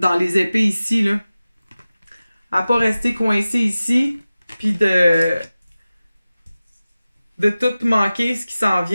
les épées ici, là. À pas rester coincé ici, puis de tout manquer ce qui s'en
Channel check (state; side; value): inverted; both; correlation -0.96